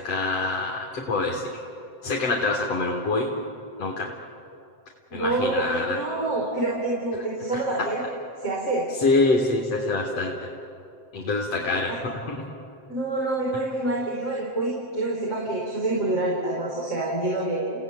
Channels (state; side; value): late; right; 7.8 ms